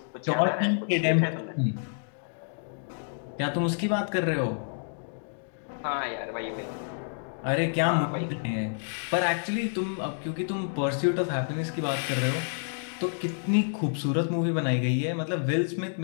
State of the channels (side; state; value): right; silent; digital silence